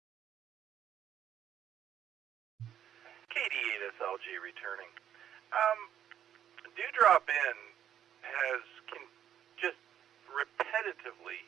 KD8SLG returning. Dewdrop in has just repetitively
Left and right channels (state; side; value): quieter; left; 10.1 dB